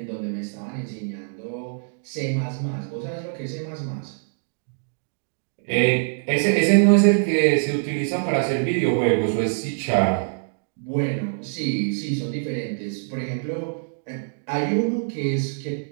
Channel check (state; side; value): silent; left; digital silence